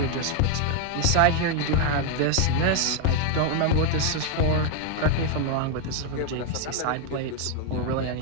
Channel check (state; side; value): different; both; correlation 0.01